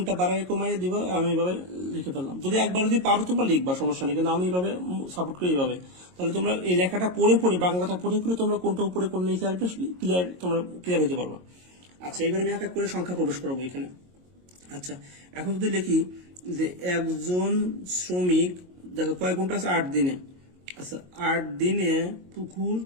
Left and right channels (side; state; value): left; late; 22 ms